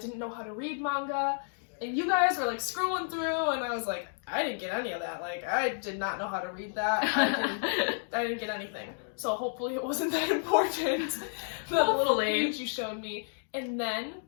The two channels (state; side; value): silent; right; digital silence